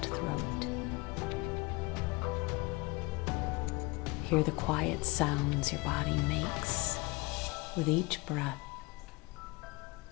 throat. Hear the quiet sounds your body makes with each breath.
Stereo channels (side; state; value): right; quieter; 24.2 dB